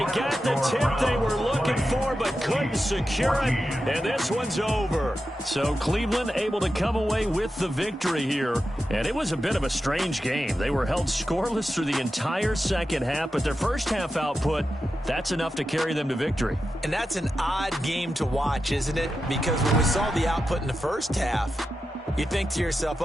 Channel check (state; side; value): normal; both; correlation 0.90